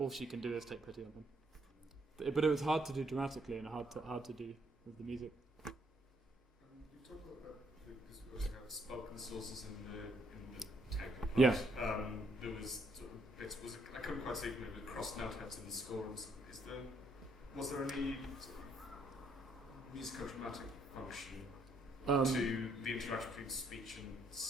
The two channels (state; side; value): normal; both; correlation 0.70